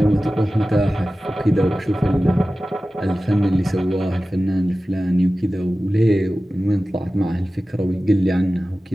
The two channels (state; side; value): normal; both; correlation 0.95